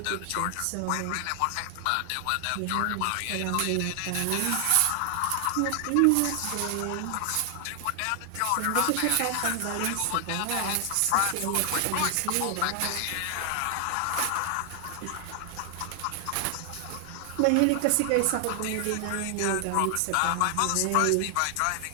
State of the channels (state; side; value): different; both; correlation 0.00